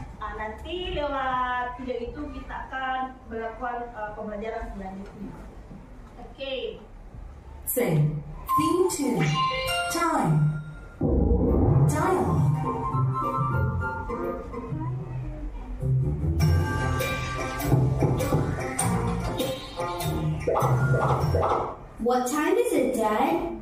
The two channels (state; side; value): identical; both; correlation 1.00